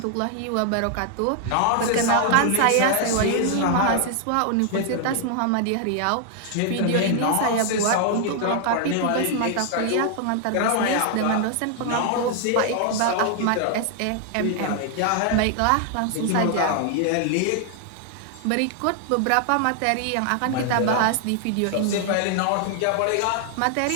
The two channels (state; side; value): different; both; correlation 0.00